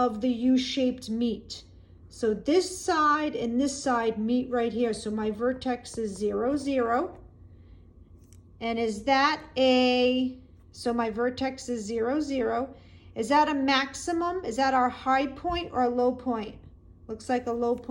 the U-shaped meet. So this side and this side meet right here. So my vertex is 0, 0. And is that so my vertex is 0, 0. Is that a maximum? Is that our high point or a low point? Looks like a low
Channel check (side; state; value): both; identical; correlation 1.00